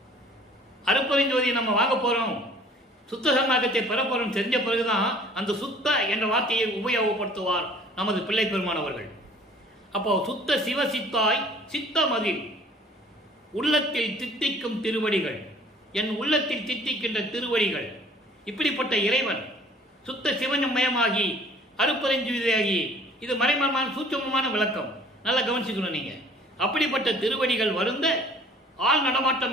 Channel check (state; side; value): normal; both; correlation 0.53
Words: அருப்பெருஞ்சோதியை நம்ம வாங்க போறோம், சுத்த சன்மார்க்கத்தை பெற போறோம் தெரிஞ்ச பிறகுதான் அந்த சுத்த என்ற வார்த்தையை உபயோகப்படுத்துவார் நமது பிள்ளை பெருமானவர்கள். அப்போ சுத்த சிவ சித்தாய் சித்தமதில் உள்ளத்தில் தித்திக்கும் திருவடிகள், என் உள்ளத்தில் தித்திக்கின்ற திருவடிகள். இப்படிப்பட்ட இறைவன் சுத்த சிவமயமாகி அருப்பெருஞ்சுவதியாகி, இது மறைமரமான சூட்சமமான விளக்கம், நல்லா கவனிச்சுக்கணும் நீங்க. அப்படிப்பட்ட திருவடிகள் வருந்த ஆள்